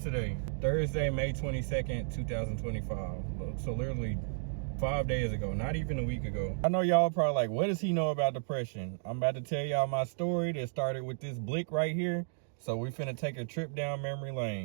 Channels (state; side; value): silent; left; digital silence